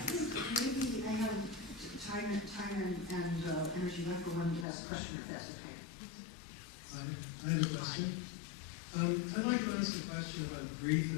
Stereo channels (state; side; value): drops out; right; at 4.7 s